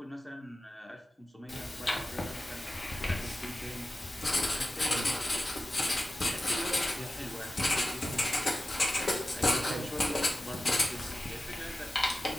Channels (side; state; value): both; normal; correlation 0.94